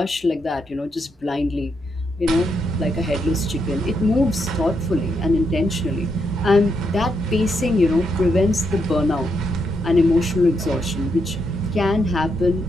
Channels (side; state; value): both; normal; correlation 0.80